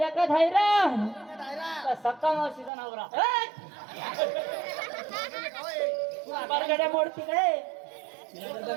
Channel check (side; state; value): left; drops out; at 2.7 s